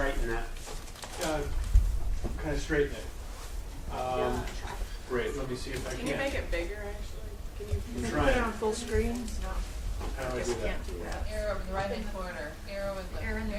that? Kind of straighten it. Great, let me see if I can. Can you make it bigger, actually? Can you Put trying. it on full screen? No, How do I guess do you that? can't do that. arrow over the right-hand corner? Arrow in the Arrow in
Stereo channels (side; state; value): both; identical; correlation 1.00